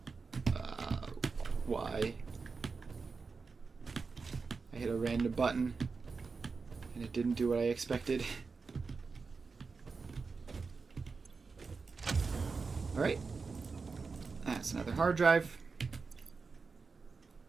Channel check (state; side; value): quieter; left; 4.6 dB